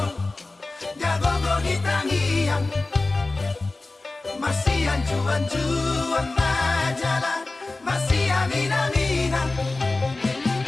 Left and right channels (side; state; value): right; quieter; 3.3 dB